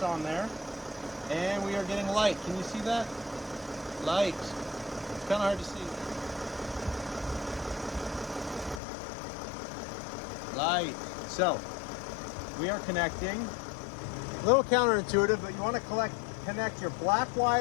on there, and we are getting light. Can you see that? Light. It's kind of hard to see. Light. So we are connecting. A little counterintuitive, but you want to connect your black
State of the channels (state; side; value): drops out; right; at 8.8 s